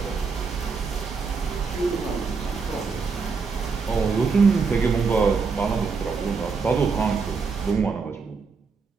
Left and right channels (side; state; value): left; quieter; 5.0 dB